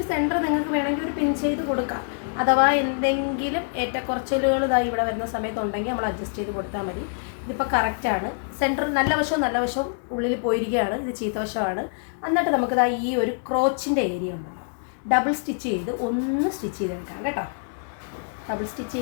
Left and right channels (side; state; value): right; silent; digital silence